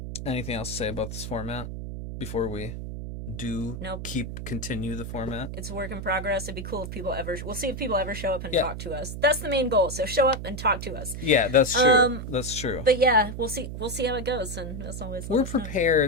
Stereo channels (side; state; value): right; noise; hum, 7 dB below the sound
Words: Anything else to say about this format before we continue the format? It's a work in progress. It'd be cool if we'll see if people ever show up and talk to us. That's the main goal. So show up and talk to us. Yeah, that's true. That's true. But yeah, we'll see how it goes. And as always, we're